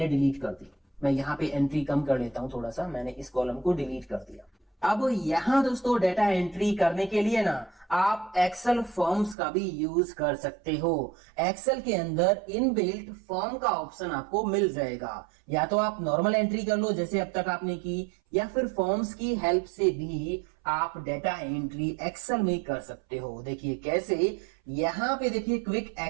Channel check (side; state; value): left; drops out; at 9.3 s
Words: डिलीट कर दी, मैं यहाँ पे एंट्री कम कर लेता हूं थोड़ा सा, मैंने इस कॉलम को डिलीट कर दिया। अब यहां दोस्तों डाटा एंट्री करने के लिए ना आप एक्सेल फॉर्म्स का भी यूज कर सकते हो। एक्सेल के अंदर इनबिल्ट फॉर्म का ऑप्शन आपको मिल जाएगा, या तो आप नॉर्मल एंट्री कर लो जैसे अब तक आपने की, या फिर फॉर्म्स की हेल्प से भी आप डाटा एंट्री एक्सेल में कर सकते हो। देखिए कैसे, यहां पे देखिए क्विक